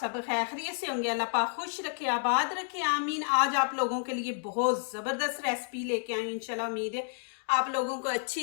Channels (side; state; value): right; silent; 57 dB below the other